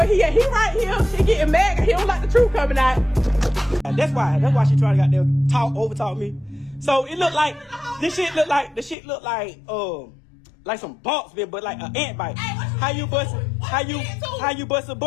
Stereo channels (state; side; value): drops out; right; at 9.0 s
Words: he at? He right here. He getting mad. He don't like the truth coming out. That's why she trying to goddamn overtalk me. So it looked like the shit looked like some bumps, man, but like an ant bite. Hey, How you bust a